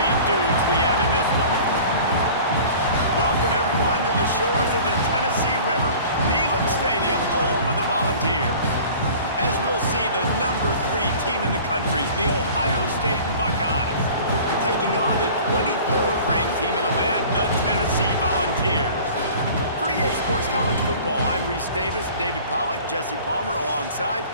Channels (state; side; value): inverted; both; correlation -0.44